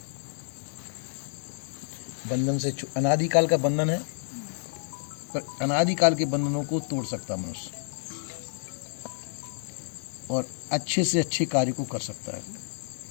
बंधन से अनादिकाल का बंधन है, पर अनादिकाल के बंधनों को तोड़ सकता है मनुष्य और अच्छे से अच्छे कार्य को कर सकता है,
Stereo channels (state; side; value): silent; right; digital silence